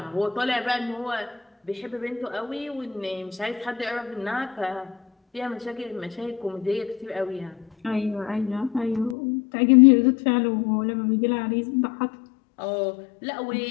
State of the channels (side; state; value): right; drops out; at 9.2 s